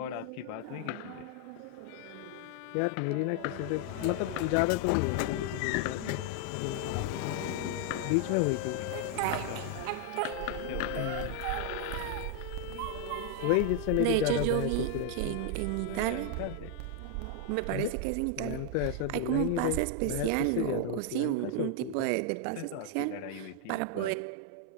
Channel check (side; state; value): both; different; correlation 0.00